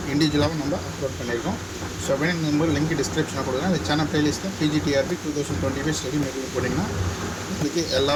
இண்டிவிஜுவலாகவும் நம்ம அப்லோட் பண்ணியிருக்கோம். ஸோ அப்படின்னு நம்பர் லிங்க் டிஸ்கிரிப்ஷனில் கொடுக்குறேன். அந்த சேனல் பிளேலிஸ்ட்டில் PGTRB 2025 ஸ்டடி மெட்டீரியல் போட்டிங்கன்னா உங்களுக்கு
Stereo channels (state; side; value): identical; both; correlation 1.00